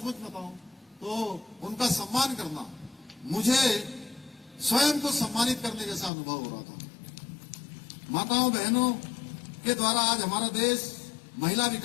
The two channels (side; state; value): right; drops out; at 6.1 s